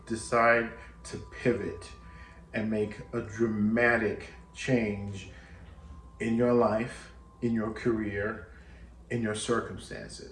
decide to pivot and make a dramatic change in your life, in your career, in your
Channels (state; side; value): identical; both; correlation 1.00